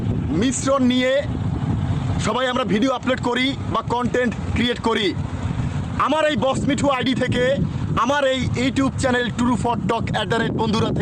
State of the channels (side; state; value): both; identical; correlation 1.00